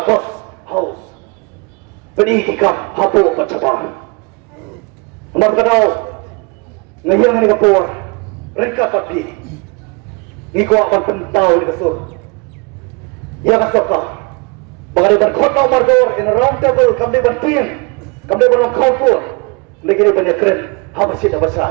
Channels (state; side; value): quieter; left; 30.5 dB